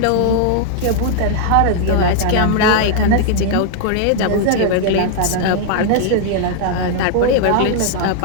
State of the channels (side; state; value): both; different; correlation 0.00